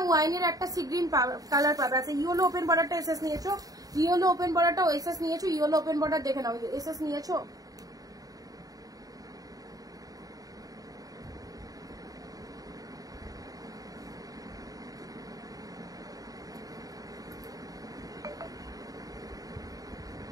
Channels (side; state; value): left; late; 0.18 ms